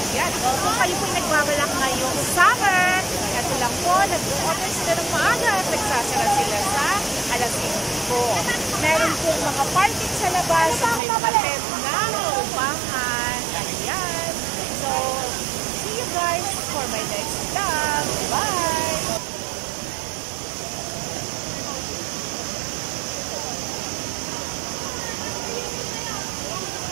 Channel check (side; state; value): left; drops out; at 11.0 s